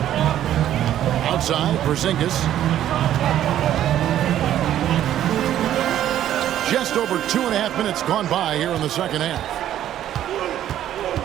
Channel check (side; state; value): left; quieter; 11.7 dB